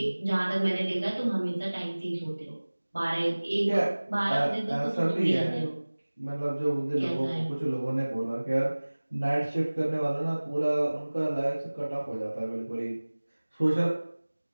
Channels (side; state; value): both; inverted; correlation -1.00